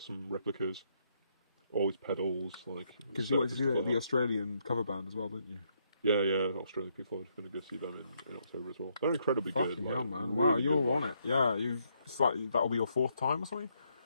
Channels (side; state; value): both; inverted; correlation -0.75